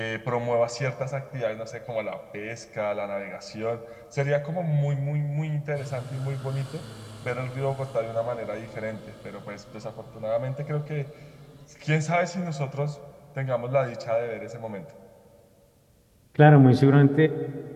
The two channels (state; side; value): identical; both; correlation 1.00